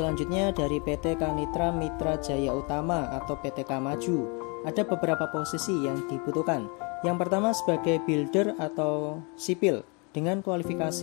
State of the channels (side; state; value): right; quieter; 32.2 dB